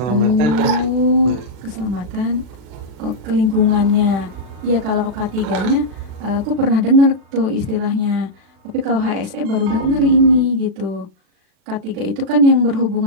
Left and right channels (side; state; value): left; late; 40 ms